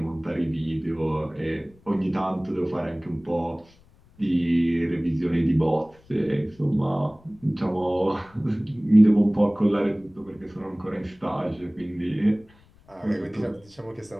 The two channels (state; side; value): noise; left; rumble, 29 dB below the sound